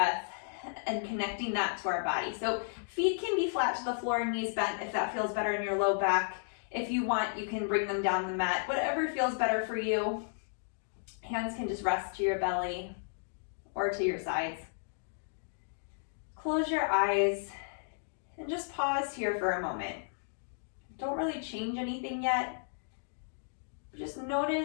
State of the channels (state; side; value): silent; right; digital silence